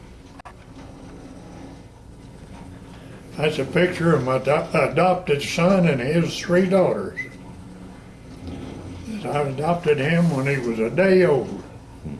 That's a picture of my adopted son and his 3 daughters. I adopted him when he was a day old.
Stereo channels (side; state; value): both; identical; correlation 1.00